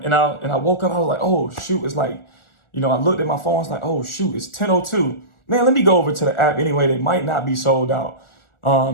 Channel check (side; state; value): right; late; 1.4 ms